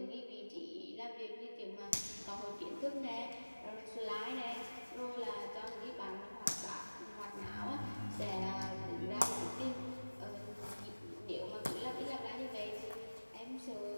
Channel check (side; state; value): both; inverted; correlation -1.00